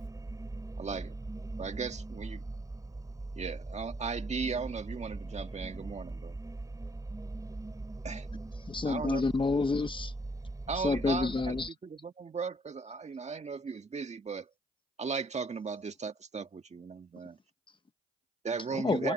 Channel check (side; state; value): both; normal; correlation 0.65